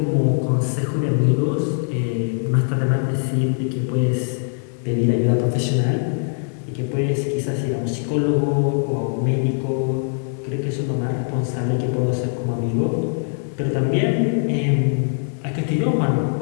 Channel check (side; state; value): right; silent; 64 dB below the other